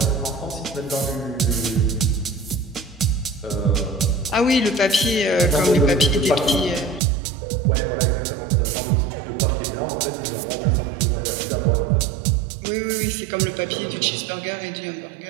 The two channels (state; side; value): drops out; left; at 7.0 s